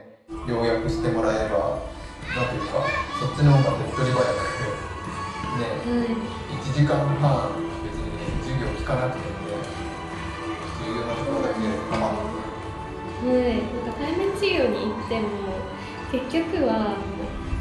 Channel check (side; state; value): both; identical; correlation 1.00